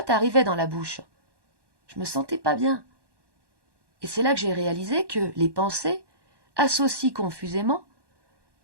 arrivait dans la bouche. Je me sentais pas bien. Et c'est là que j'ai réalisé que les pensées associent confusément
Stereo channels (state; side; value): late; left; 1.1 ms